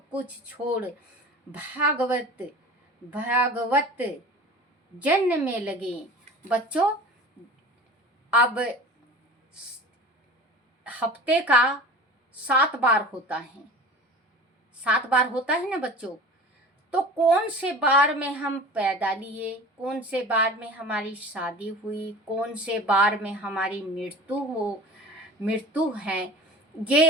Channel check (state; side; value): normal; both; correlation 0.38